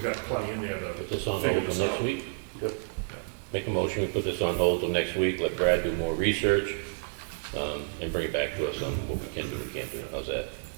got plenty in there put this to on figure hold this till out. next week. Good. Make a motion, we put this on hold till next week, let Brad do more research, and bring it back to us on what we can do, we can't do. How's that?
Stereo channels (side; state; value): left; silent; digital silence